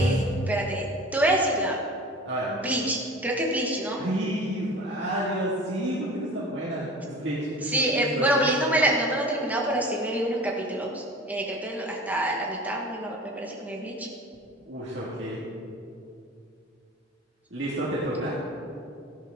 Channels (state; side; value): normal; both; correlation 0.38